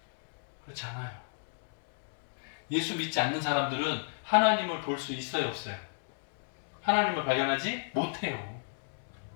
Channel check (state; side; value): silent; right; digital silence